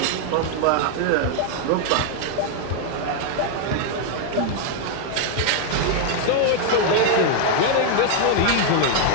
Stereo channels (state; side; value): different; both; correlation 0.00